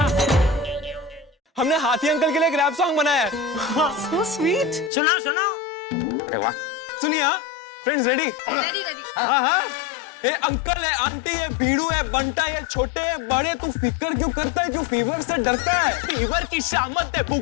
हमने हाथी अंकल के लिए एक रैप सॉन्ग बनाया है। So sweet. सुनाओ सुनाओ। अरे वाह। सुनिए फ्रेंड्स, रेडी? Ready ready. हाँ हाँ। ये अंकल है, आंटी है, बीड़ू है, बंटा है, छोटे है, बड़े, तू फिक्र क्यों करता है? क्यों फीवर से डरता है? फीवर की शामत है,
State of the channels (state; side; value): drops out; right; at 4.9 s